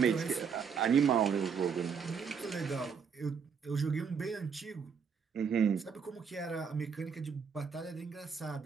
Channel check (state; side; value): quieter; left; 6.4 dB